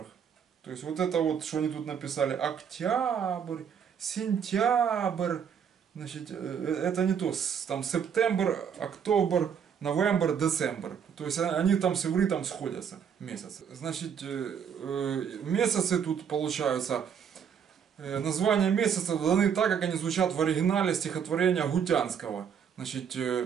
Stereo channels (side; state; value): left; quieter; 7.6 dB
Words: То есть вот это вот, что они тут написали, октябрь, сентябрь, значит, это не то, там сентябрь, октобер, новембр, децембр. То есть они там с ивритом сходятся, месяцы. Значит, месяцы тут получаются, названия месяцев даны так, как они звучат в оригинале стихотворения Гутянского. Значит,